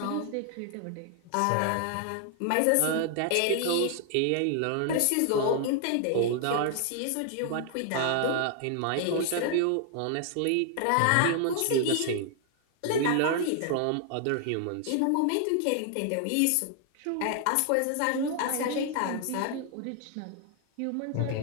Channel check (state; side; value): different; both; correlation 0.00